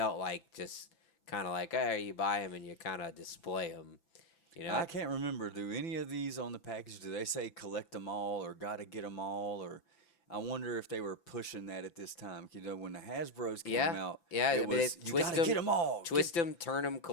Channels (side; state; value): right; late; 5.9 ms